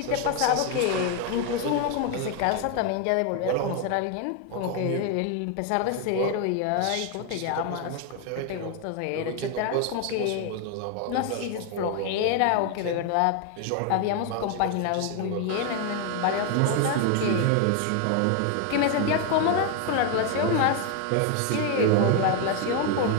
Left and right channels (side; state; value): both; different; correlation 0.01